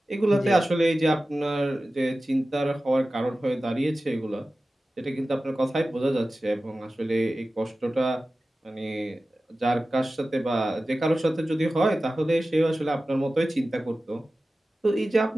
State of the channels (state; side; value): normal; both; correlation 0.95